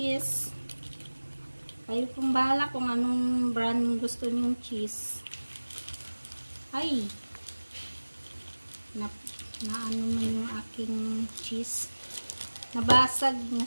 Kayo pong bahala kung anong brand gusto niyong cheese. Ay! Na ano man yung aking cheese. Nabasag,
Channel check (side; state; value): both; inverted; correlation -1.00